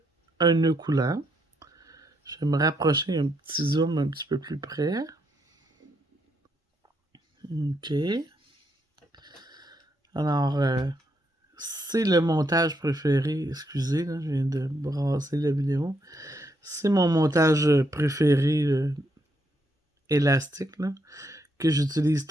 un nœud coulant. Je vais me rapprocher un petit zoom un petit peu plus près. OK. Alors, c'est le montage préféré. Excusez, là, je viens de brasser la vidéo. C'est mon montage préféré élastique, là, que j'utilise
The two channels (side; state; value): both; normal; correlation 0.77